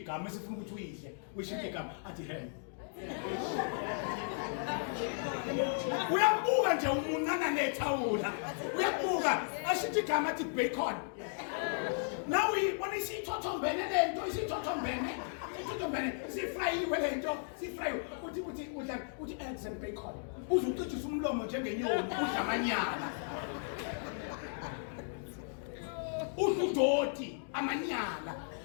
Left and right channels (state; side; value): silent; right; digital silence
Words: esifuna ukuthi uyidle ushintsha igama athi hem uyabuka nje umuncana nethawula uyabuka ashithi igama athi bacon now uyibona isithothombene lento isithothombene sifrayiwe lento sifrayiwe uthi eggs and bacon uzucijisa umlomo njengenyoni udla amanyala udoti amanyala